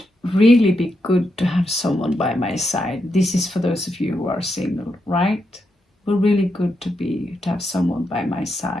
really be good to have someone by my side. This is for those of you who are single, right? Well, really good to have someone by my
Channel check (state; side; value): normal; both; correlation 0.83